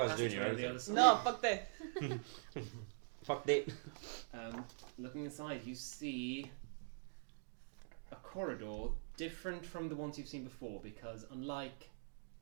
do passageway your on the own other side. No, fuck this. Fuck it. Looking inside, you see a corridor different from the ones you've seen before because unlike...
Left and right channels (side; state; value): left; silent; digital silence